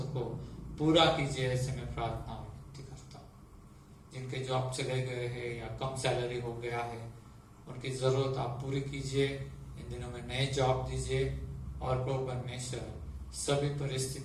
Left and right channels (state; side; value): identical; both; correlation 1.00